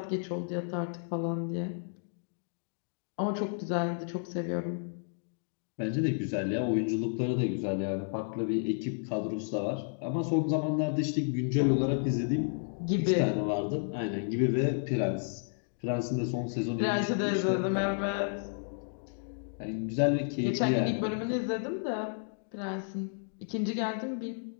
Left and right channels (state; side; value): silent; right; digital silence